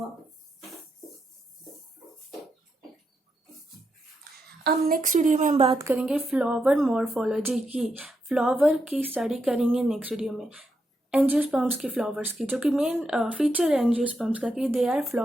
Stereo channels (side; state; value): both; normal; correlation 0.83